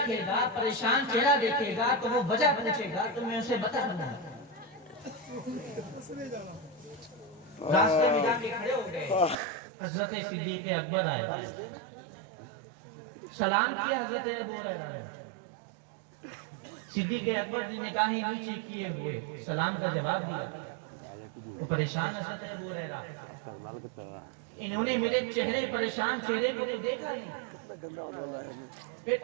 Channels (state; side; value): drops out; left; at 9.3 s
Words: گا، پریشان چہرہ دیکھے گا تو وہ وجہ پوچھے گا تو میں اسے بتا دوں گا۔ راستے میں جا کے کھڑے ہو گئے. حضرت صدیق اکبر آئے, سلام کیا حضرت ابو ہریرہ نے. صدیق اکبر نے نگاہیں نیچے کیے ہوئے سلام کا جواب دیا. وہ پریشان حضرت ابو ہریرہ, انہوں نے میرے چہرے پریشان چہرے کو تو دیکھا نہیں. پھر